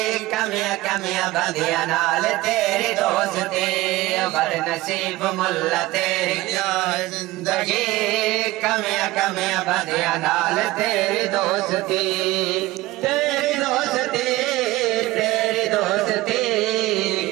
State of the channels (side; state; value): left; quieter; 18.4 dB